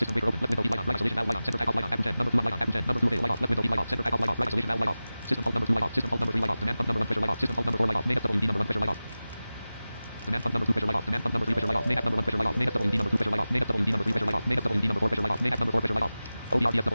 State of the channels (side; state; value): both; inverted; correlation -0.96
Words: breaker open. Left window light on. Right isolation valve light on. Center takeoff light on. Apple 10 number 2 light on. Apple 10 number 2 light off. Left window light off. Center takeoff light off. Right isolation valve light off. System pump number 2 light off. System pump number 3 light off. Demand pump number 1 pressure light off. System pump number 4 light off. Main FWD number 1 pressure light off. Demand pump number 2 pressure light off. Demand pump number 3 pressure light off. Main number 1 pressure light off. Main FWD number 2 pressure light off. Main FWD number 3 pressure light off. Main FWD number 4 pressure light off. Main number 4 pressure light off.